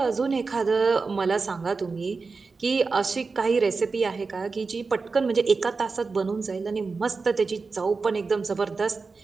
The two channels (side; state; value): left; quieter; 4.3 dB